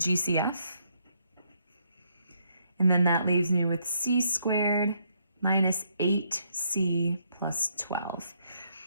And then that leaves me with c squared minus 8c plus 12.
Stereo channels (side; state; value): both; inverted; correlation -0.73